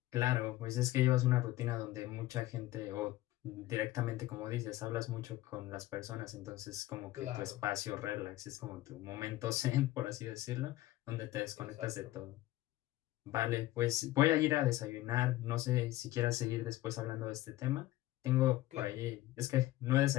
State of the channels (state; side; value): quieter; right; 16.2 dB